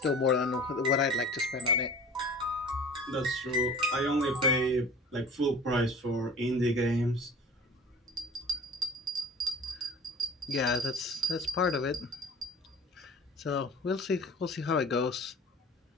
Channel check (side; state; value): both; normal; correlation 0.43